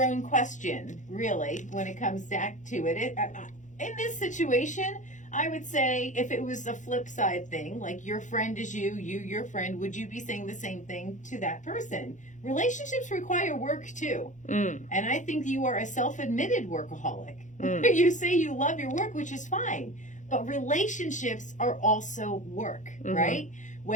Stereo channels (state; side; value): late; right; 0.36 ms